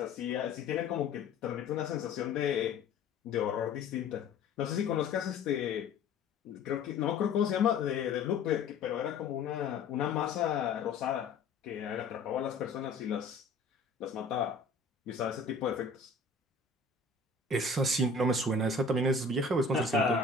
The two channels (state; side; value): quieter; right; 4.1 dB